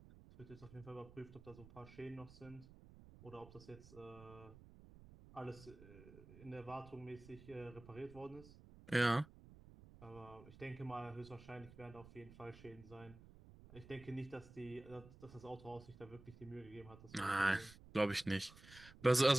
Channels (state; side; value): noise; right; rumble, 19 dB below the sound